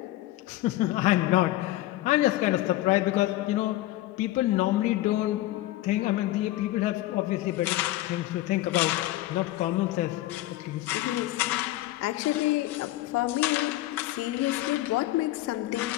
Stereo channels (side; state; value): right; quieter; 16.5 dB